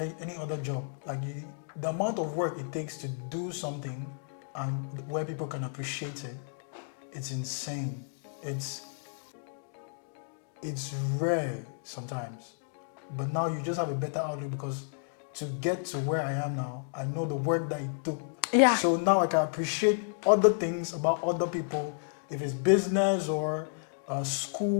any other job. The amount of work it takes to do something and where people can appreciate it, it's insane. It's rare sometimes. But now you just have a better outlook, because to get to where I am now, I know the work that it took. Yeah. So now I can appreciate other things about other people. If it's business or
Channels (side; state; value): right; silent; digital silence